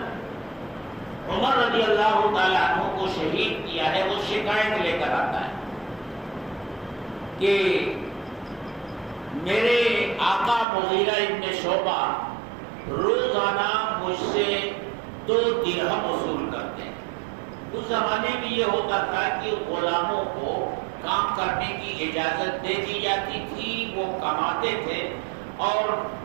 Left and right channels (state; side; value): drops out; left; at 10.7 s